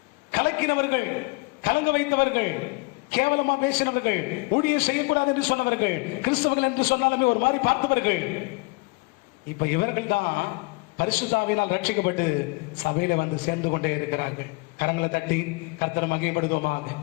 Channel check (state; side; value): quieter; right; 27.7 dB